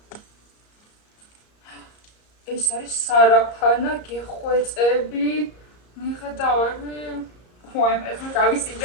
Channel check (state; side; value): late; right; 34 ms